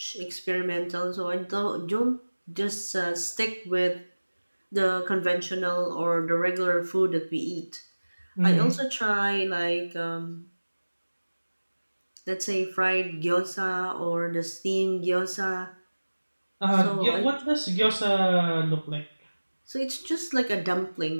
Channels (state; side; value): inverted; both; correlation -1.00